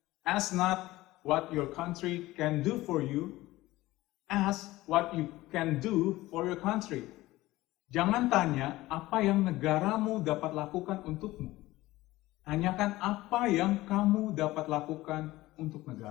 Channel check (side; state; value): right; quieter; 17.9 dB